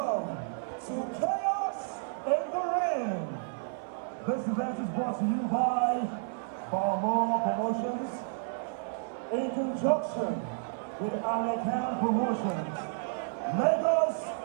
to Chaos in the Ring. This event is brought to you by Viraux Promotions in conjunction with Analyse Promotions. Lagos,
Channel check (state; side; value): silent; left; 57 dB below the other